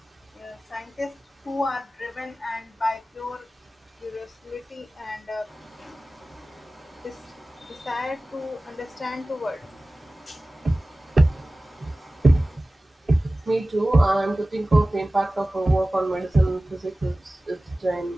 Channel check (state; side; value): normal; both; correlation 0.97